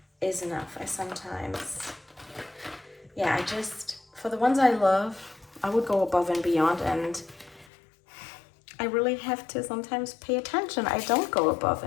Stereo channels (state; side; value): drops out; right; at 7.7 s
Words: is enough. I sometimes, yeah, I just, for the ones I love, I would go above and beyond, and I really have to sometimes pay attention. I don't go above